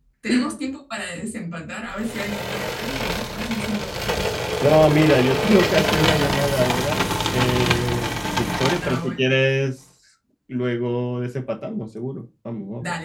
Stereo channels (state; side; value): identical; both; correlation 1.00